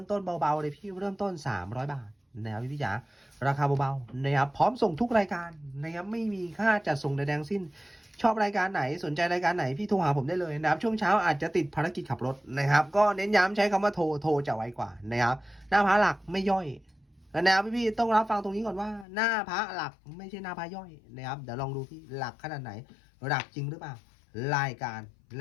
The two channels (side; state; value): right; drops out; at 19.1 s